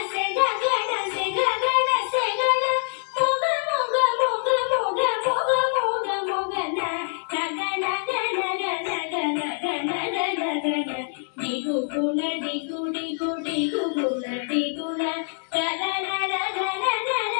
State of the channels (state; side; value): silent; right; digital silence